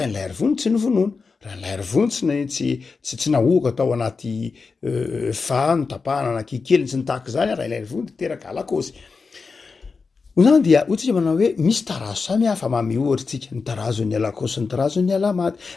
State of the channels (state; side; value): quieter; right; 4.7 dB